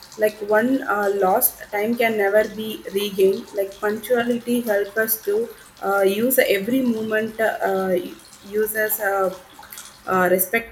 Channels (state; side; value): identical; both; correlation 1.00